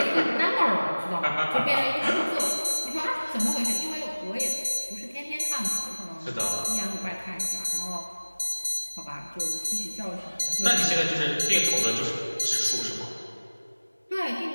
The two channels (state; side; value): inverted; both; correlation -1.00